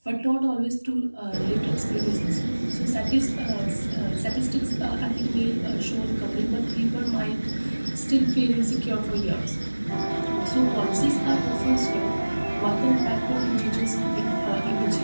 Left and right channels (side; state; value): both; inverted; correlation -1.00